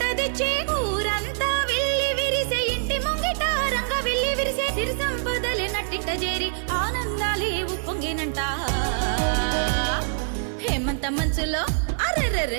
తెచ్చే ఊరంతా విల్లి విరిసే ఇంటి ముంగిట రంగ విల్లి విరిసే సిరి సంపదలే నట్టింట చేరి ఆనందాలే ఉప్పొంగినంట హేమంత మంచులో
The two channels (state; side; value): silent; left; 62 dB below the other